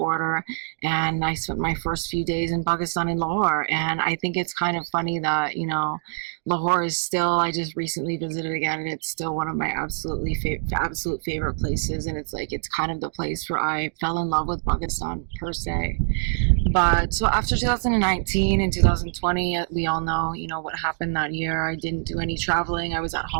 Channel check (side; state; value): left; silent; digital silence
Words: And I spent my first few days in Pakistan in Lahore. And I think it's kind of funny that, you know, Lahore is still, I just recently visited again, and it's still one of my absolute favorite places. And it's like, it's kind of the place where I fell in love with Pakistan per se. But so after 2019 and 2020, we all know, you know, what happened that year. I didn't do any traveling. I was at